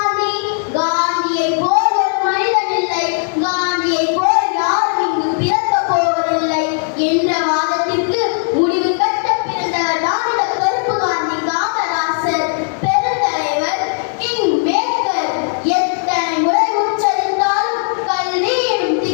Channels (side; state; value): right; silent; 66 dB below the other